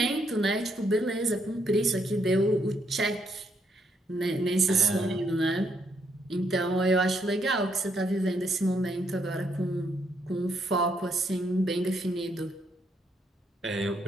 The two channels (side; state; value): both; normal; correlation 0.74